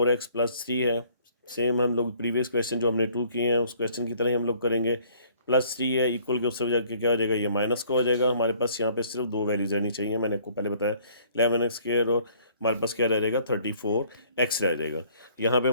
+ 3 है। सेम हम लोग प्रीवियस क्वेश्चन जो हमने 2 किए हैं उस क्वेश्चन की तरह ही हम लोग करेंगे। +3 है, इक्वल के उससे जाके क्या हो जाएगा, ये माइनस का हो जाएगा। हमारे पास यहाँ पे सिर्फ दो वैल्यूज रहनी चाहिए, मैंने आपको पहले बताया 11x² और हमारे पास क्या रह जाएगा, 34x रह जाएगा। यहाँ पे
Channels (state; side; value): inverted; both; correlation -0.59